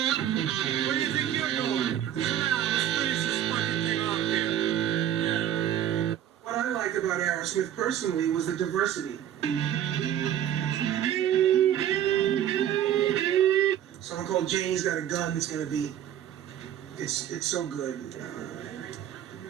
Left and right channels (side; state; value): left; quieter; 10.7 dB